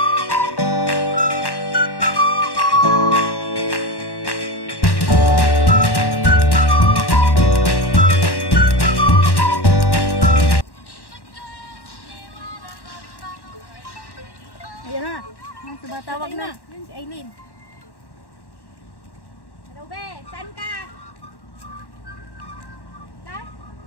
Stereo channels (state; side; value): late; right; 1.1 ms